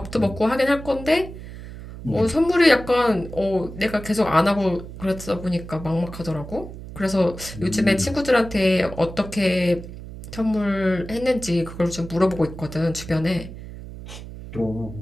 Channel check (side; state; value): right; noise; hum, 12 dB below the sound